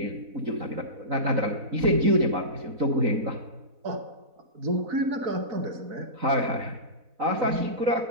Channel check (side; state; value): left; late; 4.1 ms